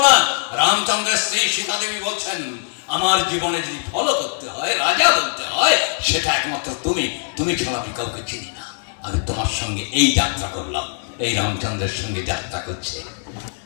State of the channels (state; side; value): silent; right; 65 dB below the other